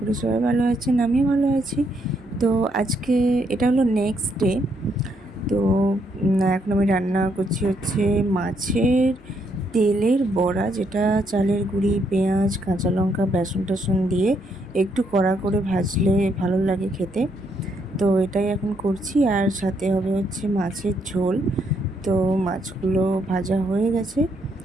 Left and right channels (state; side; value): normal; both; correlation 0.74